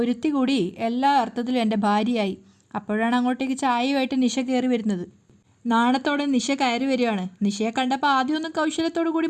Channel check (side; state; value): both; identical; correlation 1.00